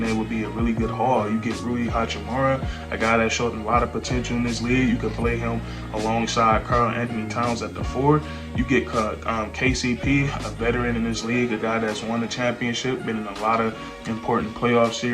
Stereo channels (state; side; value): identical; both; correlation 1.00